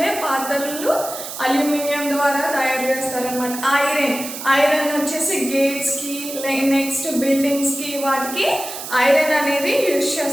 పాత్రలు అల్యూమినియం ద్వారా తయారు చేస్తారనమాట. ఐరన్ వచ్చేసి గేట్స్కి, నెక్స్ట్ బిల్డింగ్స్కి, వాటికి ఐరన్ అనేది యూజ్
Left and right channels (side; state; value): right; noise; hiss, 9 dB below the sound